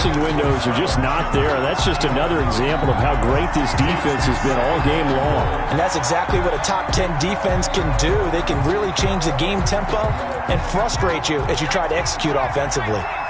windows are just not there. That's just another example of how great this defense has been all game long. And that's exactly what a top 10 defense can do. They can really change the game tempo and frustrate you as you try to execute offensively.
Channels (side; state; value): both; identical; correlation 1.00